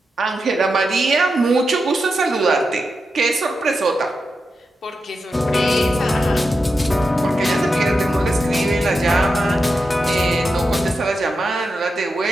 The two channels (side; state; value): both; normal; correlation 0.88